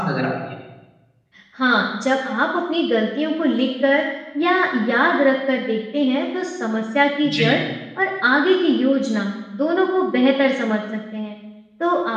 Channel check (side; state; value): both; identical; correlation 1.00